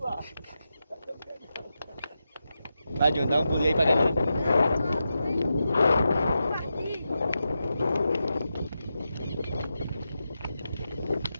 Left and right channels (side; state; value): both; inverted; correlation -0.89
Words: Vai adiantar um pulinho aí pra galera.